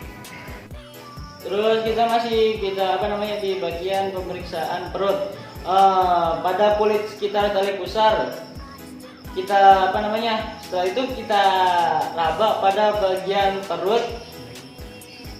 Terus kita masih di bagian pemeriksaan perut. Pada kulit sekitar tali pusar kita setelah itu kita raba pada bagian perut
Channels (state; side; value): identical; both; correlation 1.00